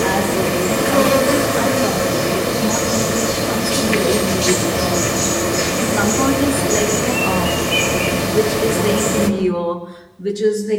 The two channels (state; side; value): identical; both; correlation 1.00